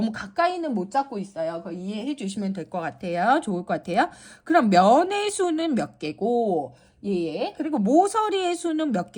가까이는 못 잡고 있어요. 그거 이해해 주시면 될 것 같아요. 좋을 것 같아요. 그럼 면의 수는 몇 개고, 그리고 모서리의 수는 몇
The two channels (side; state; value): both; identical; correlation 1.00